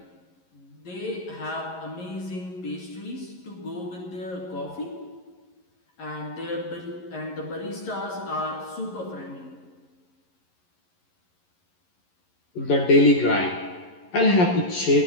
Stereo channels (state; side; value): late; right; 11 ms